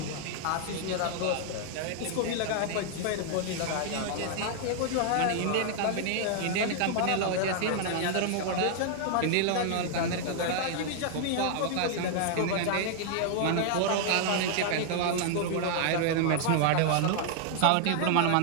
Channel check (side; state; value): both; different; correlation 0.00